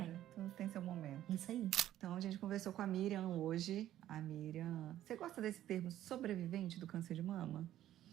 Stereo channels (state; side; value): quieter; left; 12.7 dB